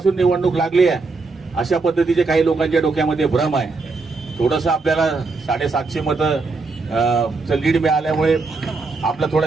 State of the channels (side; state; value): left; quieter; 3.9 dB